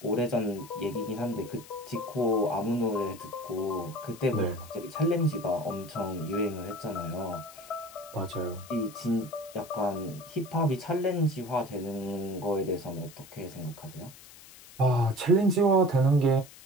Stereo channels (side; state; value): left; noise; hiss, 19 dB below the sound